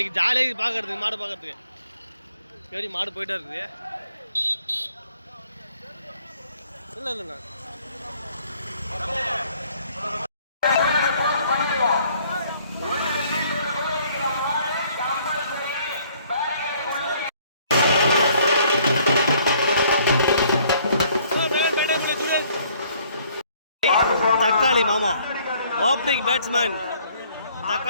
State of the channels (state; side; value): inverted; both; correlation -0.62